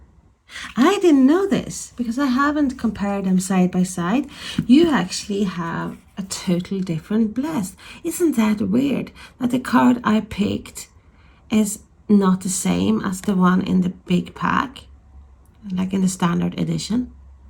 I didn't know this, because I haven't compared them side by side. You actually have a totally different blessed. Isn't that weird that the card I picked is not the same as the one in the big pack, like in the standard edition?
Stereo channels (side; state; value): both; identical; correlation 1.00